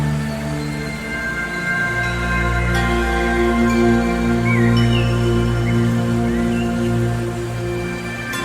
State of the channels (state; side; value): identical; both; correlation 1.00